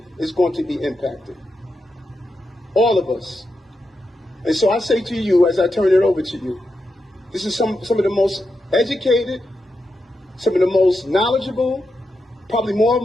is going to be impacted. All of us. And so I say to you, as I turn it over to you, this is some of the most educated, some of the most knowledgeable, probably more of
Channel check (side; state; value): both; normal; correlation 0.87